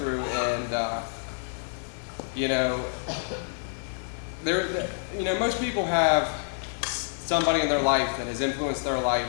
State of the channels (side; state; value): right; silent; 57 dB below the other